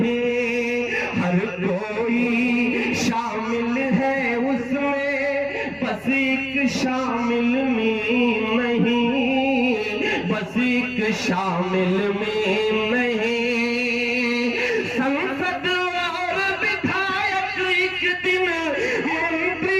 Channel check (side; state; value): both; identical; correlation 1.00